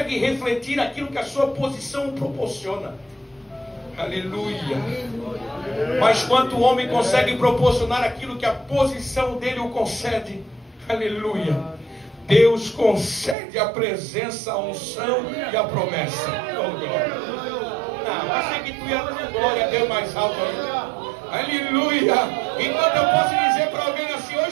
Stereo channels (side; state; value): left; drops out; at 13.4 s